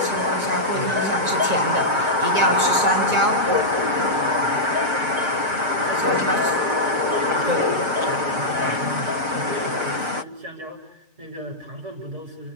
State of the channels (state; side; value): late; left; 6.4 ms